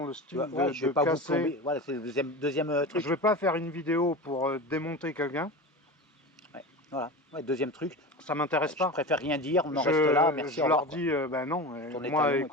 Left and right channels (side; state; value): both; normal; correlation 0.28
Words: le style je vais pas vous plomber. Voilà, c'est le deuxième truc. Je vais pas faire une vidéo pour démonter quelqu'un. Voilà, deuxième truc. Ça m'intéresse pas. Je préfère rien dire, on en reste là, merci. Je leur dis, ben non, moi